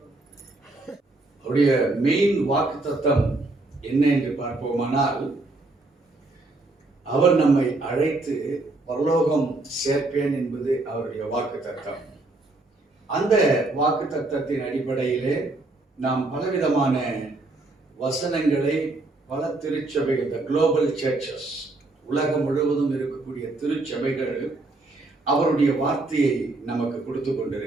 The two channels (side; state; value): left; quieter; 3.1 dB